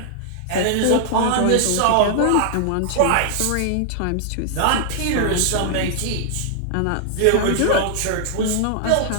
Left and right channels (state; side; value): different; both; correlation -0.01